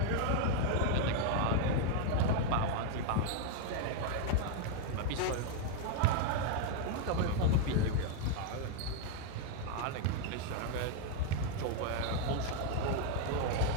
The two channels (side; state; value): both; different; correlation 0.00